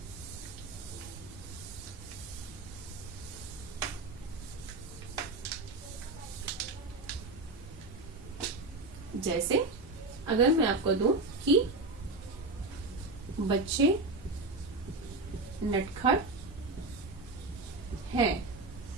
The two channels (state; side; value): quieter; left; 3.2 dB